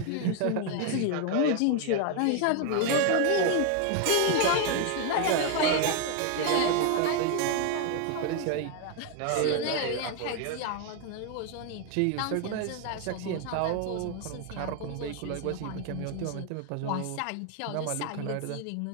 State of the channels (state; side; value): different; both; correlation 0.01